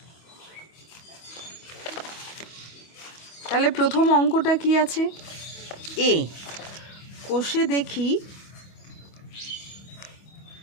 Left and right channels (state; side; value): late; right; 25 ms